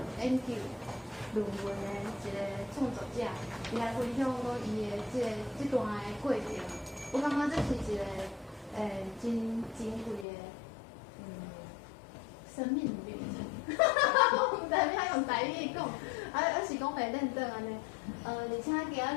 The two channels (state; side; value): drops out; right; at 10.2 s